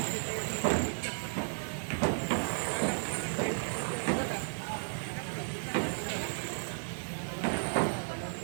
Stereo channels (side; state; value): left; silent; digital silence